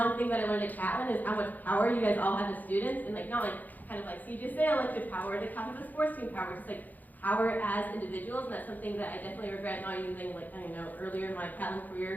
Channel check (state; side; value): late; right; 0.083 ms